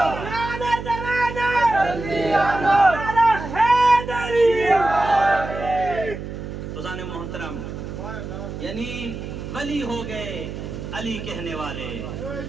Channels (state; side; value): noise; right; hum, 8 dB below the sound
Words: خزان محترم، یعنی ولی ہو گئے علی کہنے والے،